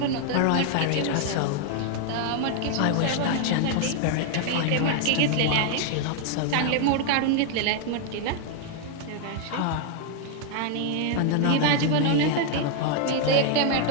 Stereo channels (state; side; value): different; both; correlation 0.00